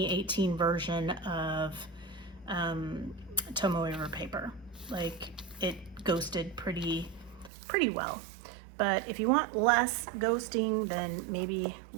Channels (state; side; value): drops out; left; at 7.5 s